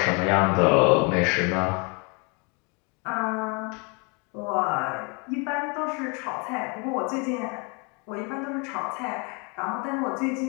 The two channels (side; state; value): right; quieter; 32.2 dB